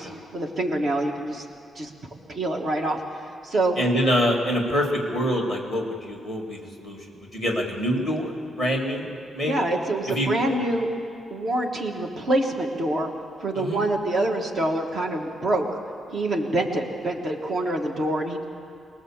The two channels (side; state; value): both; normal; correlation 0.73